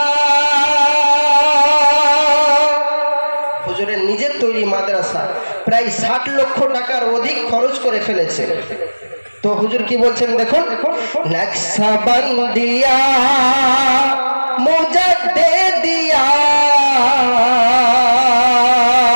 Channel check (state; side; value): inverted; both; correlation -1.00